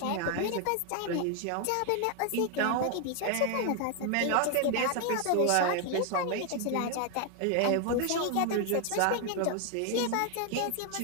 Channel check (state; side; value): different; both; correlation 0.01